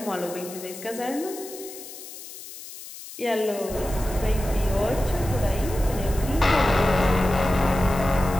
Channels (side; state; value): left; noise; hiss, 14 dB below the sound